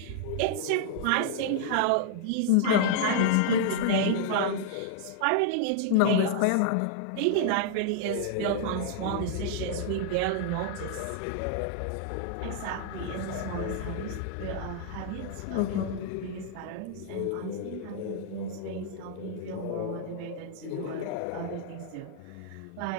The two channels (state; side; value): different; both; correlation -0.01